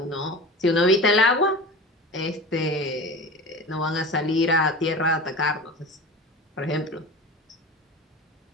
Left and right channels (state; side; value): normal; both; correlation 0.32